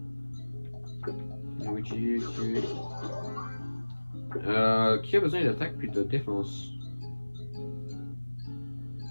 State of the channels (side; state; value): both; inverted; correlation -1.00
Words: Luigi, ok. Qui a besoin d'attaque puis de défense?